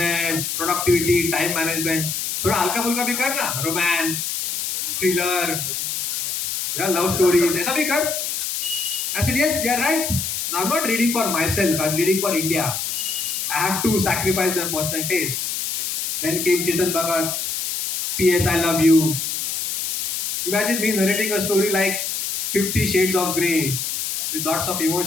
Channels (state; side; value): noise; left; hiss, 2 dB below the sound